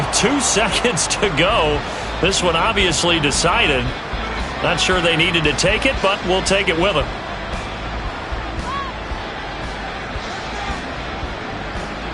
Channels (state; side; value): identical; both; correlation 1.00